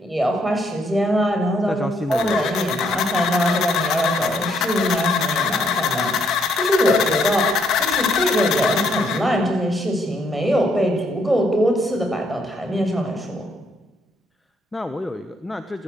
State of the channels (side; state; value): both; normal; correlation 0.72